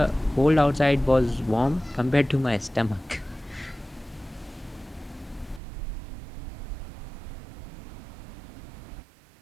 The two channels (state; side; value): drops out; left; at 5.6 s